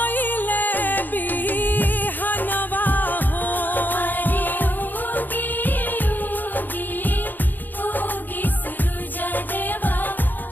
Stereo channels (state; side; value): late; right; 0.088 ms